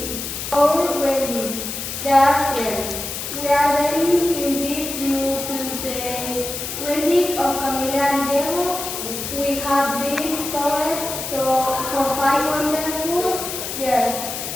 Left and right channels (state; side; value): noise; left; hiss, 6 dB below the sound